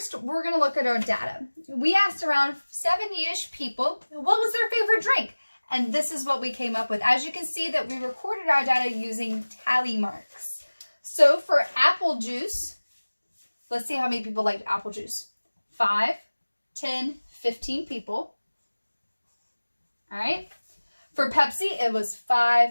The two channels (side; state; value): both; inverted; correlation -1.00